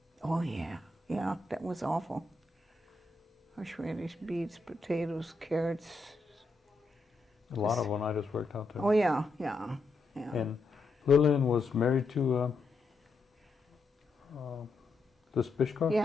Oh yeah, yeah, that was awful. Horseradish, beets, potatoes, carrots. A lot of when I just worked out there. Oh yeah, yeah, yeah. And Lillian was married to this Bishkov?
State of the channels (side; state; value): right; quieter; 3.4 dB